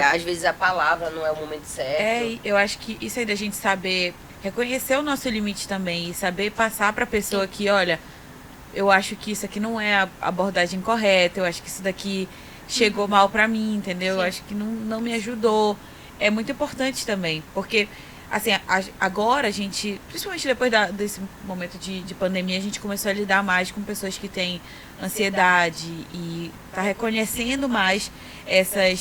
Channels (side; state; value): both; identical; correlation 1.00